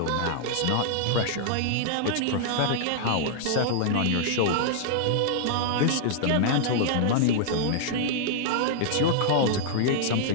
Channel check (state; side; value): different; both; correlation -0.01